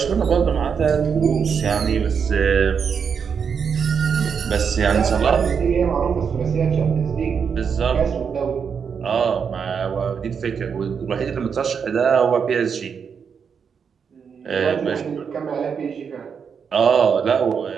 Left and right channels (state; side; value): quieter; left; 6.6 dB